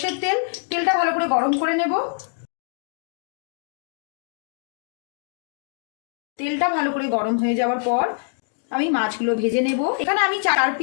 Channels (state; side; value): silent; right; 58 dB below the other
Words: তেল। তেলটা ভালো করে গরম করে নেব। তেলটা ভালো করে গরম হয়ে যাওয়ার পর আমি মাছগুলো ভেজে নেব। এখানে আমি 4